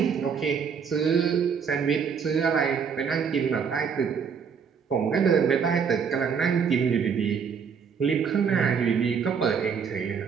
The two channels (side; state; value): left; quieter; 6.6 dB